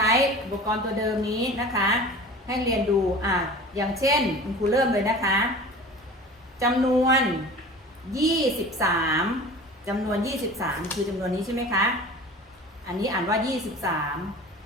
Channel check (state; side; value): normal; both; correlation 0.39